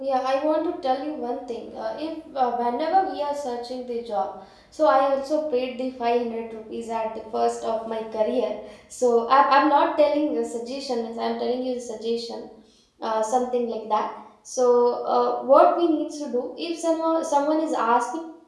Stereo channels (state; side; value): identical; both; correlation 1.00